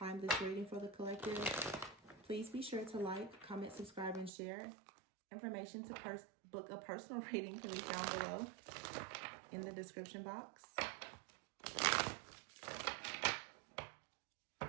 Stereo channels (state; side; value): drops out; left; at 4.3 s